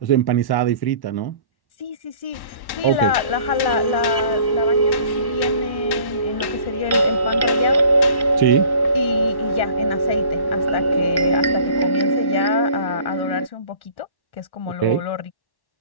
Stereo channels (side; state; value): right; late; 1.1 ms